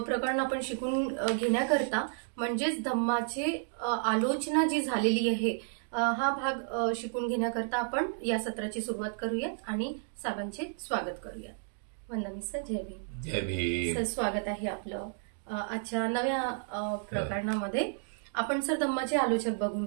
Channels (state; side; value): silent; left; digital silence